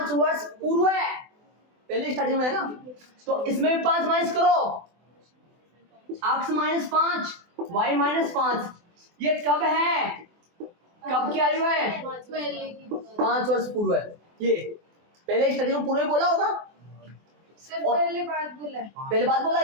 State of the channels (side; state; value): left; late; 24 ms